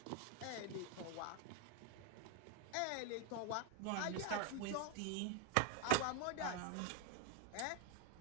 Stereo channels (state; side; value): different; both; correlation 0.02